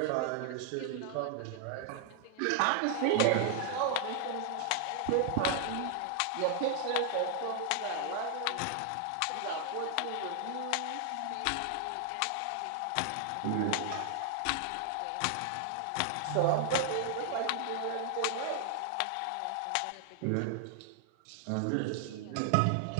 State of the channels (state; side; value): different; both; correlation 0.00